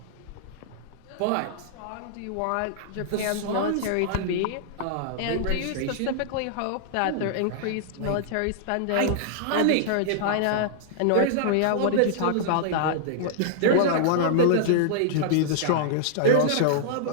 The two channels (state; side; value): different; both; correlation -0.01